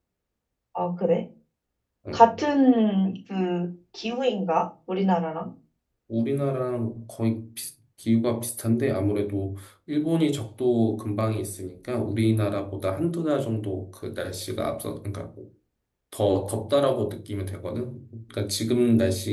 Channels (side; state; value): both; identical; correlation 1.00